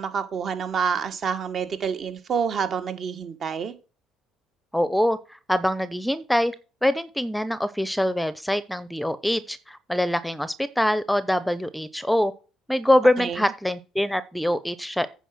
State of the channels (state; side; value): normal; both; correlation 0.92